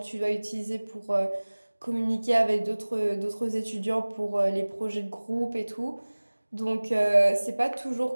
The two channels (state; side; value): inverted; both; correlation -1.00